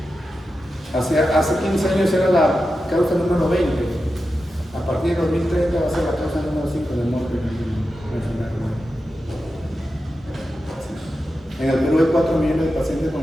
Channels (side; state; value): both; normal; correlation 0.91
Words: Hace 15 años era la causa número 20. A partir de 2030 va a ser la causa número 5 de muerte en la enfermedad renal. En el Perú hay 4 millones de pacientes